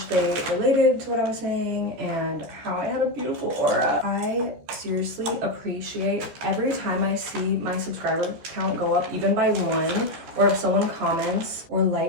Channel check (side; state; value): left; late; 14 ms